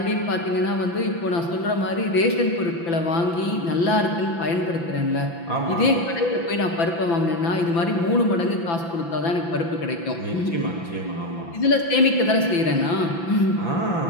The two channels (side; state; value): right; late; 5.9 ms